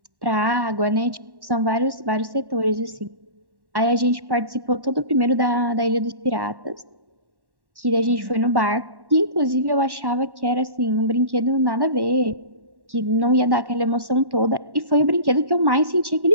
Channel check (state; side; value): late; left; 1.1 ms